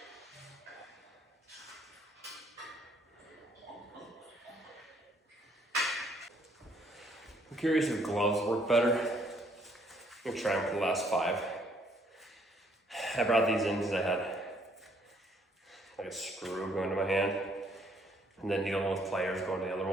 I'm curious if gloves work better. I'm gonna try them for the last 5. I brought these in because I had like a screw going to my hand, and then needle nose pliers going to the other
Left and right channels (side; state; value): both; normal; correlation 0.66